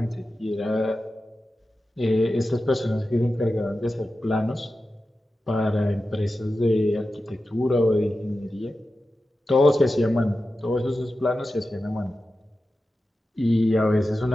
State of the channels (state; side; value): normal; both; correlation 0.93